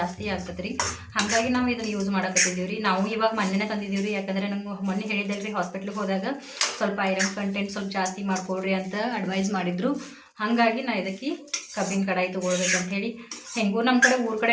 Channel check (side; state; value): both; identical; correlation 1.00